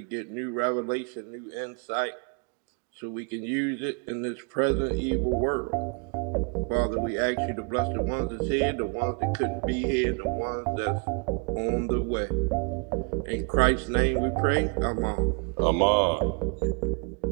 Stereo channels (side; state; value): left; quieter; 34.5 dB